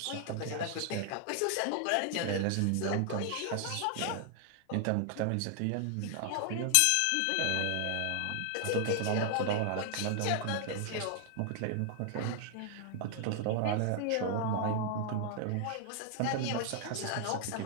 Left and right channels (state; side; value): different; both; correlation 0.00